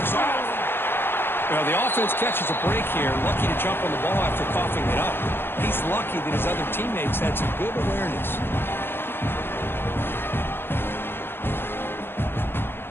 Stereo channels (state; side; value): late; right; 0.10 ms